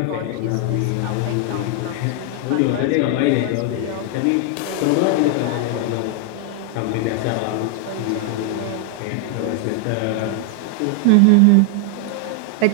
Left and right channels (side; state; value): both; different; correlation 0.00